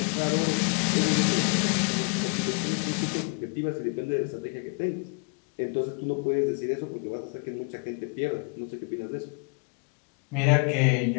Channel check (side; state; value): right; quieter; 36.2 dB